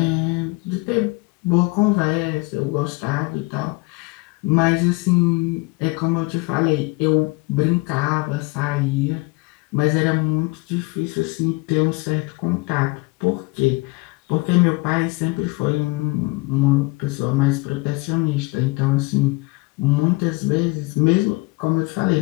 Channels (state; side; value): quieter; right; 25.3 dB